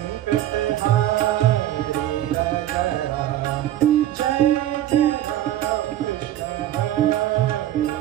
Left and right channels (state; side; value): quieter; left; 12.7 dB